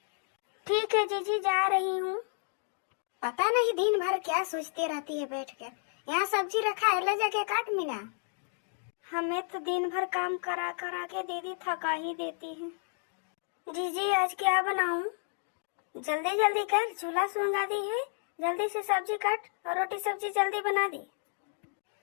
ठीक है जीजी, जा रही हूँ। पता नहीं दिन भर क्या सोचती रहती है बैठ कर। यहाँ सब्जी रखा है, ले जाके काट मीना। हमें तो दिन भर काम करा करा के दीदी थका ही देती है। जीजी आज क्या बनाऊं? जल्दी जल्दी कर, चूल्हा सुलगा दी है, जल्दी से सब्जी काट और रोटी सब्जी जल्दी बना दी।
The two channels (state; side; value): silent; right; 57 dB below the other